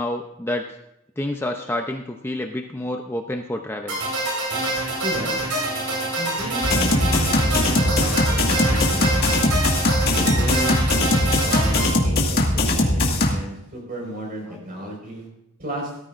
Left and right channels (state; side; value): normal; both; correlation 0.50